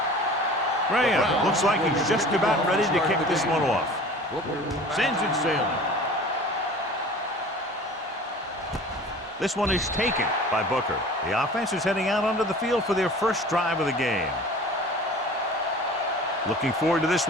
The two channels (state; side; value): normal; both; correlation 0.42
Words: Graham looks like he's just about ready to kick this one off. Sends it sailing. This one is taken by Booker. The offense is heading out onto the field for their first drive of the game. Looking forward to this